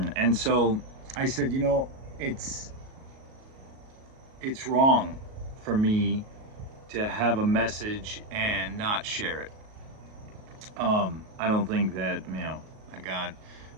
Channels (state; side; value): late; left; 38 ms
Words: so I said, you know, it's wrong for me to have a message and not share it. I don't think that, you know, I got